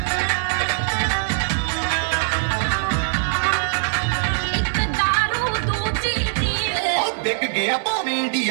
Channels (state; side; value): silent; left; digital silence